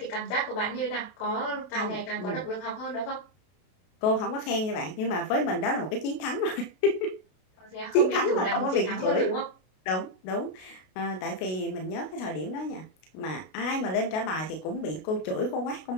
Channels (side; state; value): right; late; 32 ms